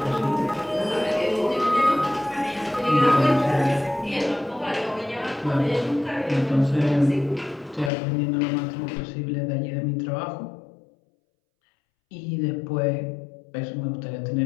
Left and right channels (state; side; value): drops out; right; at 7.9 s